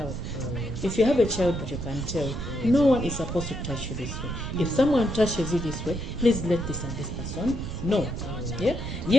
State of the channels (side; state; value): right; noise; rumble, 6 dB below the sound